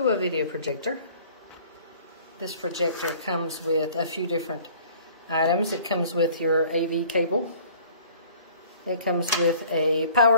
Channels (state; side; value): inverted; both; correlation -0.51